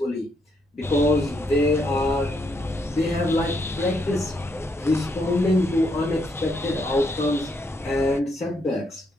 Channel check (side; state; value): both; normal; correlation 0.75